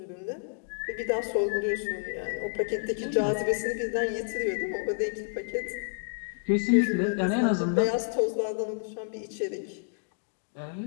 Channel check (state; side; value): silent; right; digital silence